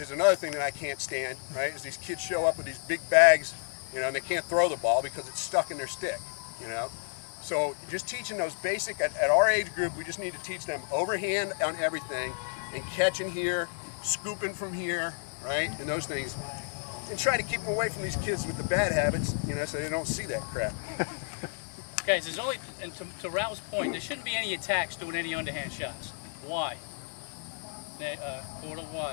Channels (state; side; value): silent; right; 57 dB below the other